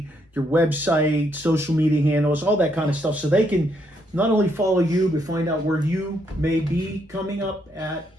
your website, social media handles, all that kind of stuff, so they can not only follow you, but find out where you may be coming up at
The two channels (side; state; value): both; normal; correlation 0.74